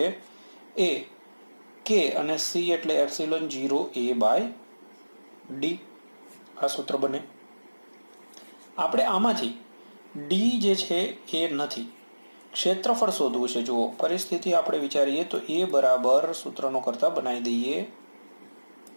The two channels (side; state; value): both; inverted; correlation -1.00